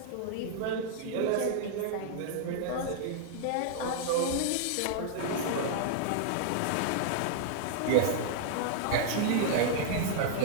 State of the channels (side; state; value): both; different; correlation -0.01